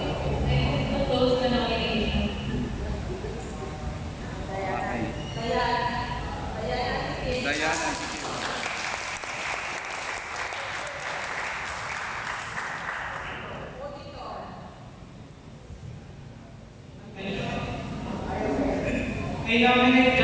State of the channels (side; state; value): both; identical; correlation 1.00